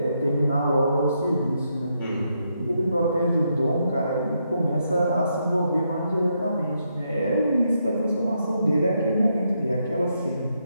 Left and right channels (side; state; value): both; inverted; correlation -0.79